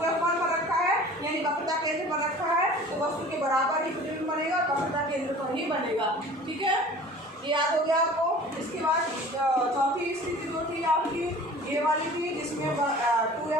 पर रखा है, यानी वक्रता केंद्र पर रखा है, तो वस्तु के बराबर ही प्रतिबिंब बनेगा, वक्रता केंद्र पर ही बनेगा, ठीक है। ये याद हो गया आपको। इसके बाद चौथी स्थिति जो थी आपकी ये वाली थी, जिसमें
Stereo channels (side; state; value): both; normal; correlation 0.44